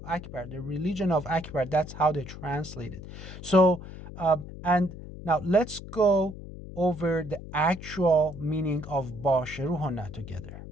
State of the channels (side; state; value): left; noise; hum, 13 dB below the sound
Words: Akbar, the religion of Akbar, that's how they translate it. So, and now let's go over the actual meaning of باشروهن together.